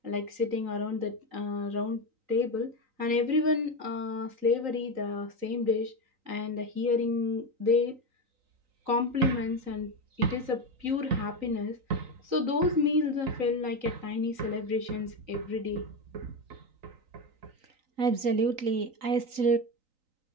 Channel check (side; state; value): left; late; 3.9 ms